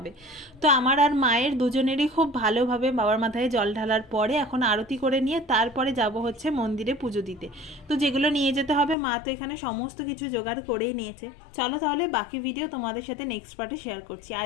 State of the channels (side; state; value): right; drops out; at 9.0 s